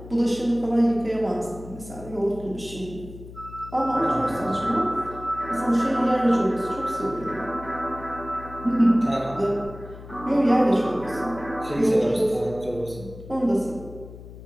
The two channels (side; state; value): left; noise; hum, 15 dB below the sound